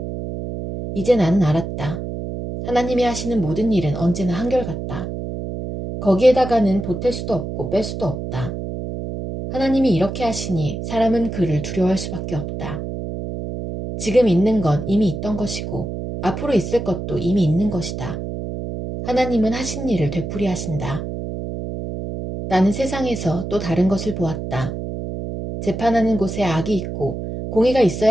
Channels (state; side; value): noise; right; hum, 6 dB below the sound